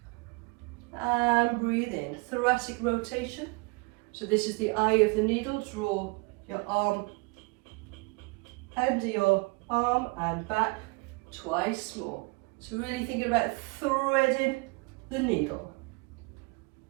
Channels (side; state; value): left; quieter; 27.8 dB